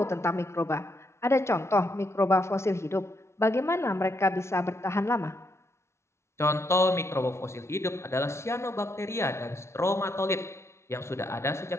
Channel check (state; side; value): late; right; 0.13 ms